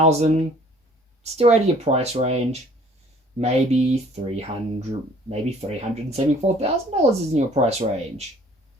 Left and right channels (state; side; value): normal; both; correlation 0.56